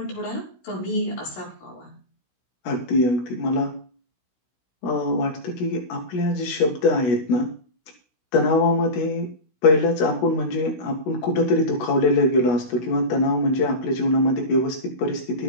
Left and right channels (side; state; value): right; late; 16 ms